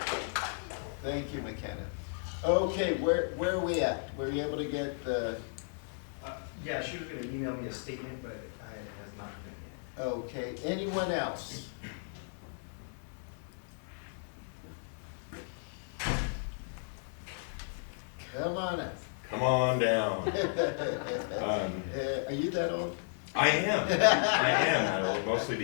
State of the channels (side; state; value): right; silent; 55 dB below the other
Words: Thank you, McKenna. Okay, where are we at? Were you able to get the? Yeah, she was gonna email me a statement, but it has not been yet. Okay, anyone else? Come on up. Come on down. Are you that old? I am that old, mostly